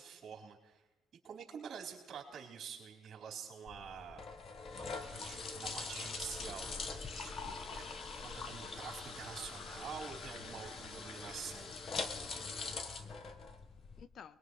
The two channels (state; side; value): normal; both; correlation 0.66